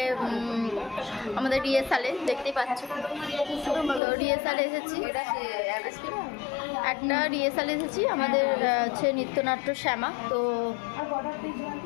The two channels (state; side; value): drops out; right; at 4.0 s